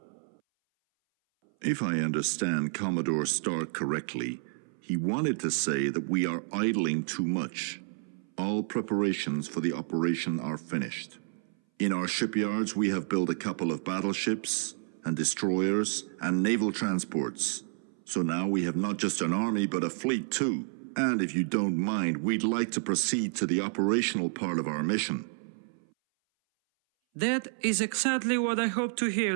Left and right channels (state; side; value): silent; left; 58 dB below the other